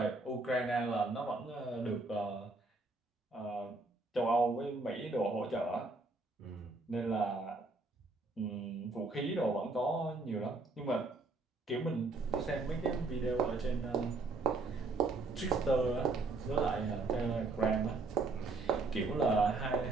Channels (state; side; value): quieter; left; 3.5 dB